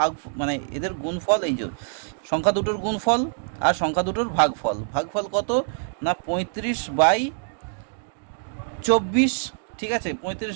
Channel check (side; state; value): left; silent; digital silence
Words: মানে এদের গুণফল, এই যে সংখ্যা দুটোর গুণফল আর সংখ্যা দুটোর ভাগফল, ভাগফল কত না 35/24। ঠিক আছে,